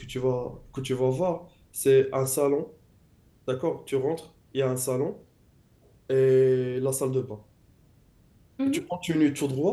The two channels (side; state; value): both; identical; correlation 1.00